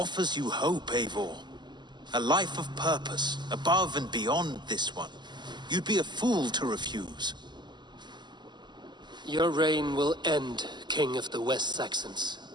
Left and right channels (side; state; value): left; late; 0.21 ms